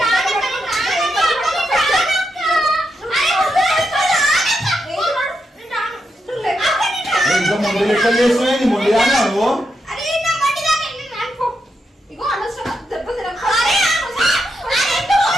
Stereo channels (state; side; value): normal; both; correlation 0.84